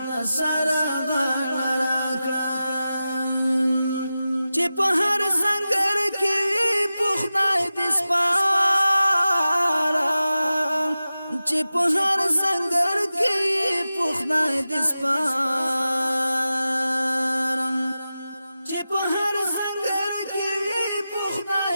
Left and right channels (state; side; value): inverted; both; correlation -0.94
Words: سره غاړه راکړه چې په هر سنگر کې په خدای دې سپاره چې په هر سنگر کې په خدای دې سپارم چې په هر سنگر کې په خدای